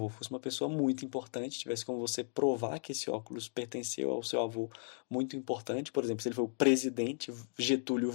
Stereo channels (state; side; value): silent; right; 54 dB below the other